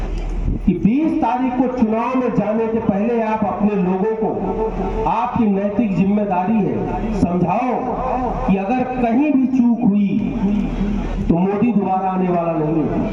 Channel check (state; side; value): identical; both; correlation 1.00